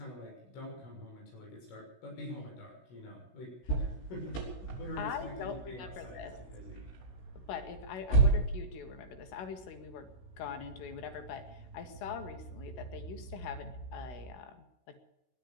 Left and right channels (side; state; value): right; late; 16 ms